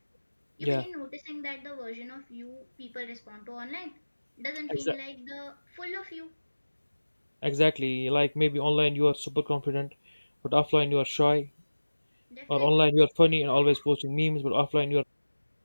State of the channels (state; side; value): inverted; both; correlation -1.00